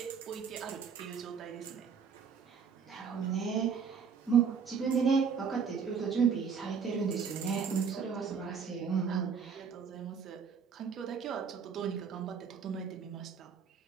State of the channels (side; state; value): left; quieter; 6.3 dB